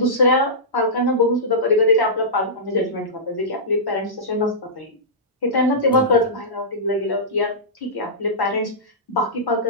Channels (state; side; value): normal; both; correlation -0.16